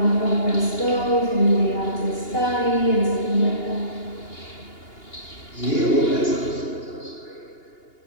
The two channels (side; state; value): right; late; 2.8 ms